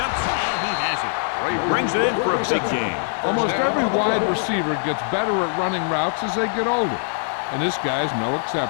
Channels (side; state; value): right; silent; digital silence